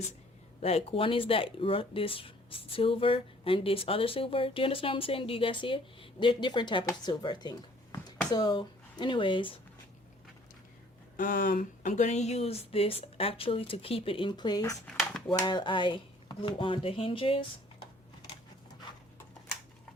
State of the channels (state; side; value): normal; both; correlation 0.57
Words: like this silver and this other silver. Do you understand what I'm saying? Do you guys see it? They're different type of silver, I think. So anyways, I'm gonna use this actually to keep it in place while I glue on the hinges.